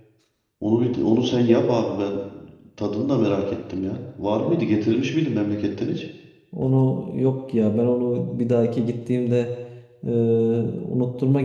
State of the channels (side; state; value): both; identical; correlation 1.00